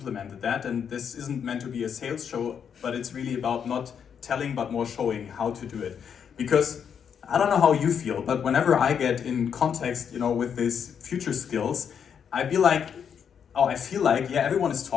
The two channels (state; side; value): quieter; right; 7.6 dB